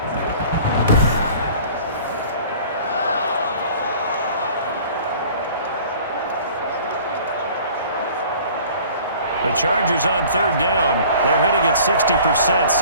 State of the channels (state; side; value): inverted; both; correlation -0.48